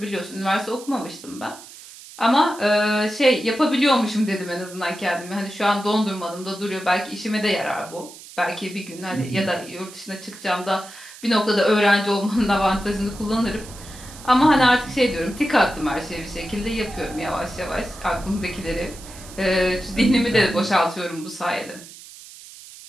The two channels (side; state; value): right; noise; hiss, 17 dB below the sound